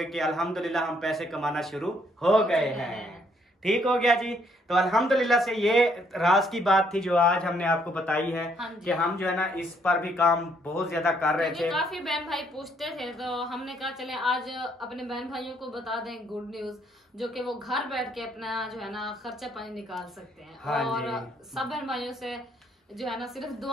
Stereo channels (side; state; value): both; normal; correlation 0.69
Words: कि अल्हम्दुलिल्लाह हम पैसे कमाना शुरू हो गए हैं। ठीक हो गया जी। तो अल्हम्दुलिल्लाह से ये राज की बात थी जो आज हमने आपको बताई है कि हम जो है ना इस पर भी काम बहुत ज्यादा कर रहे थे। काफी बहन भाई पूछते थे तो हमने कहा चले आज अपने बहन भाइयों को बता दें गुड न्यूज, जो कि वो घर बैठ के अपना जो है ना खर्चा पानी निकाल सकते हैं। हाँ और सब बहन भाइयों से जो है ना सिर्फ